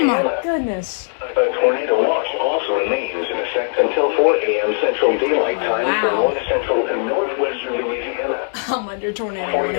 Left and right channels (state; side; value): silent; right; 66 dB below the other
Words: my Louisiana. goodness. A tornado watch also remains in effect until 4 a.m. Central Daylight Time Wow. for north central and northwestern Louisiana. I'm under tornado